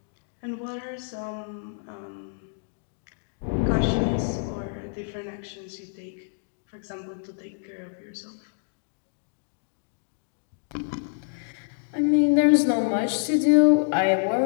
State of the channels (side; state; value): right; silent; digital silence